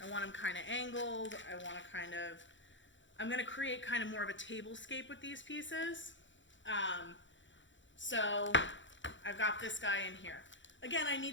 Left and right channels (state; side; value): late; right; 0.54 ms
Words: I want them kind of angled. I want to kind of, I'm going to create kind of more of a tablescape with these pieces. So I've got this guy in here. Again, I